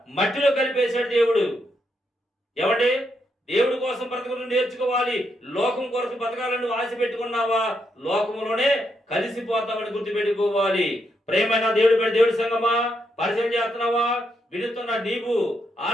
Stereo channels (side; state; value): both; normal; correlation 0.79